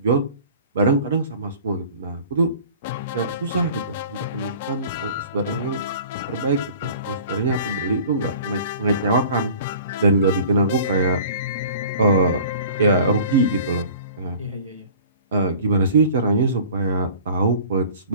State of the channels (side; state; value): both; inverted; correlation -0.45